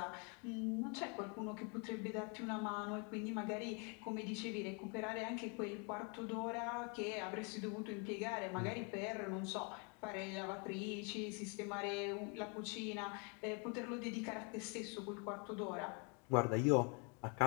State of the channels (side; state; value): right; quieter; 35.3 dB